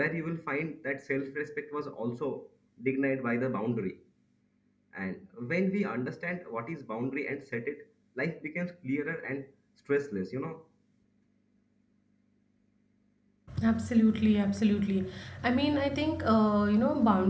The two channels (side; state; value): both; identical; correlation 1.00